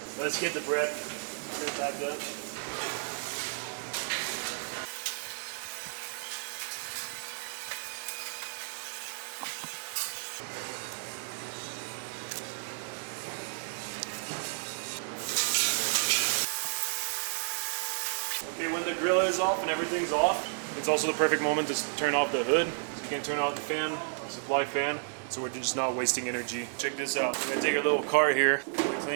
Let's get the bread back up. Okay, when the grill is off and everything's off, it's also the perfect moment to turn off the hood. So you can turn off the fan, the supply fan. So we're just not wasting energy. Check this out. We're gonna take a little cart here,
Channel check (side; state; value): left; silent; digital silence